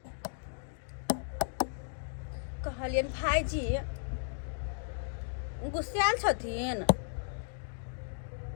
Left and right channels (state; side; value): silent; right; digital silence